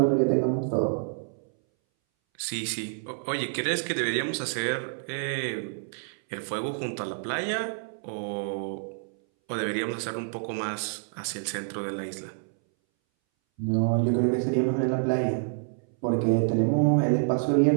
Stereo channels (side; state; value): left; silent; 60 dB below the other